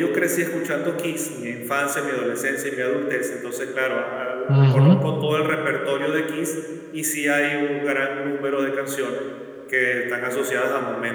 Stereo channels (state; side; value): identical; both; correlation 1.00